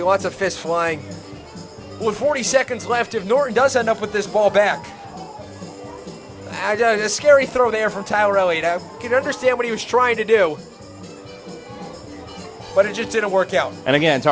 lots of fists flying. With 40 seconds left, if Norton does end up with this ball back, a scary throw there from Tyler Elliott. I can understand what he was trying to do, but it just didn't work out. And again,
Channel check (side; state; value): both; identical; correlation 1.00